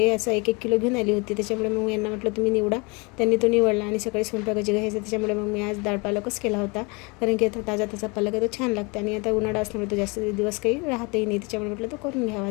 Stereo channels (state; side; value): quieter; right; 28.9 dB